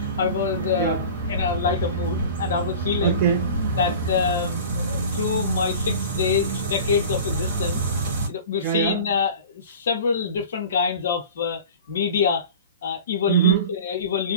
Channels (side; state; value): both; inverted; correlation -0.38